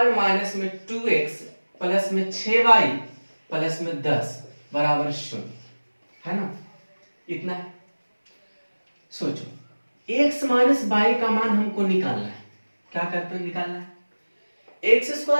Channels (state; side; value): inverted; both; correlation -1.00